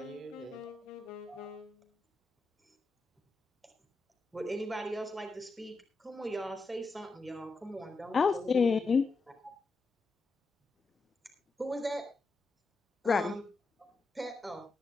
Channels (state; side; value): quieter; right; 3.6 dB